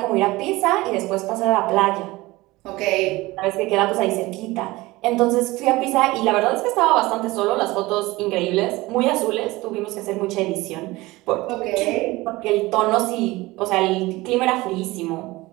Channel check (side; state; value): left; quieter; 20.3 dB